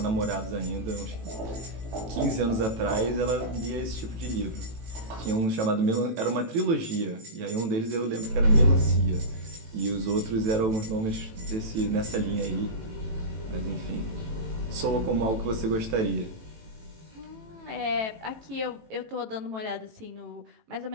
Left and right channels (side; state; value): left; late; 18 ms